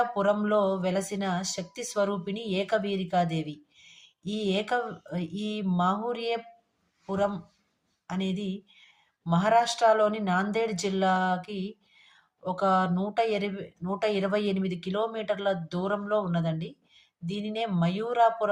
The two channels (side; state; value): both; identical; correlation 1.00